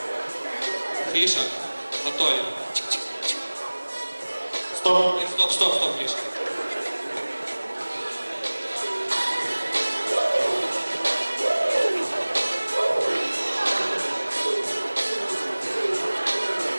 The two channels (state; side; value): inverted; both; correlation -1.00